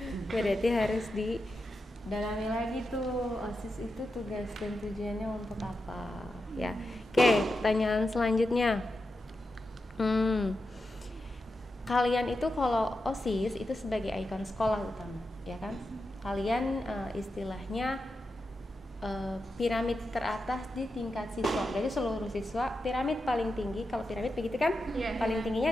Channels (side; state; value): both; normal; correlation 0.89